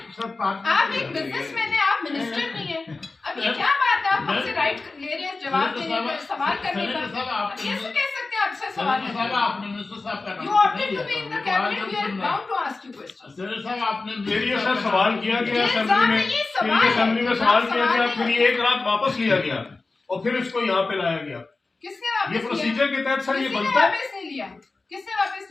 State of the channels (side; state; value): right; quieter; 3.6 dB